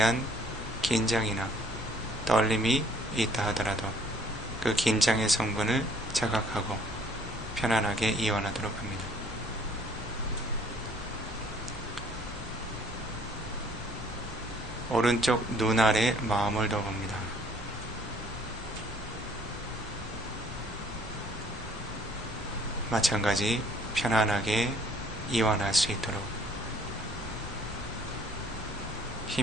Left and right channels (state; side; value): normal; both; correlation 0.59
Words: 긴장이나 떨림이 있다 하더라도 그 긴장의 성분을 자각하고 편안하게 이완하도록 합니다. 오른쪽 눈 아래 마음을 둬봅니다. 마찬가지 편안하게 이완할 수 있도록